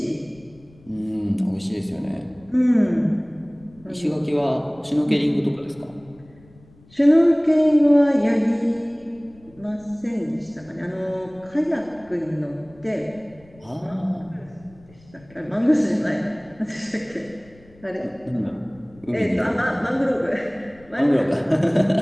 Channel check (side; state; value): left; noise; rumble, 26 dB below the sound